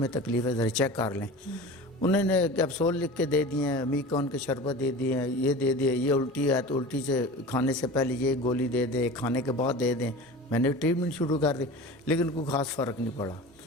تکلیف ہے، ذرا چیک کر لیں. انہوں نے کیپسول لکھ کے دے دیے ہیں، میکون کے شربت دے دیے ہیں، یہ دے دیے، یہ الٹی ہے تو الٹی سے کھانے سے پہلے یہ گولی دے دیں، کھانے کے بعد دے دیں. میں نے ٹریٹمنٹ شروع کر دی، لیکن کوئی خاص فرق نہیں پڑا.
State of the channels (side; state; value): both; normal; correlation 0.35